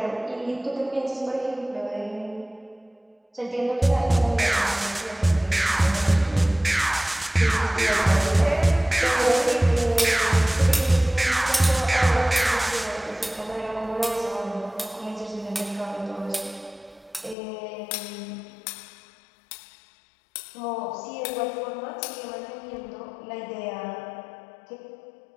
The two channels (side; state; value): right; drops out; at 17.4 s